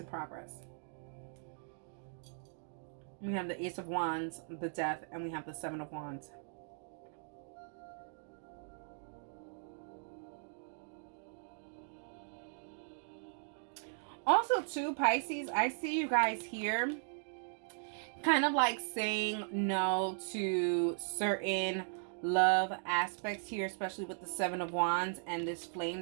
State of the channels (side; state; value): left; silent; digital silence